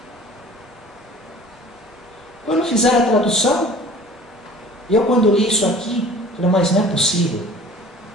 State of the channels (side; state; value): both; normal; correlation 0.46